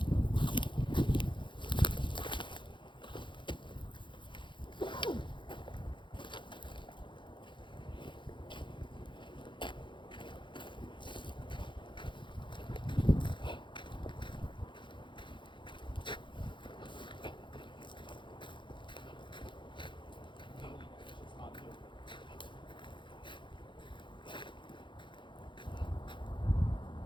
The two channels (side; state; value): right; late; 0.23 ms